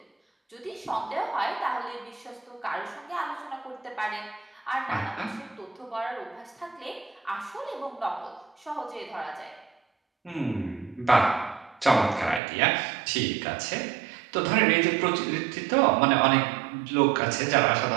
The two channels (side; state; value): left; drops out; at 12.4 s